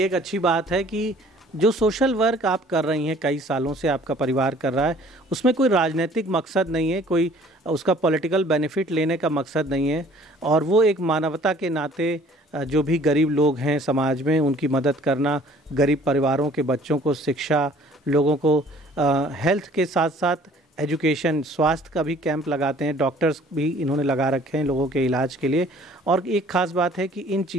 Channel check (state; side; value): normal; both; correlation 0.54